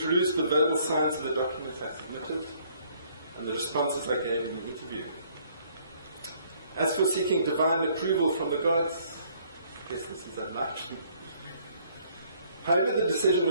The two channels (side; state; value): both; inverted; correlation -0.63